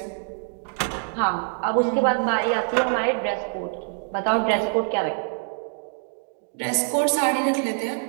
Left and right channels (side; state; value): left; silent; 56 dB below the other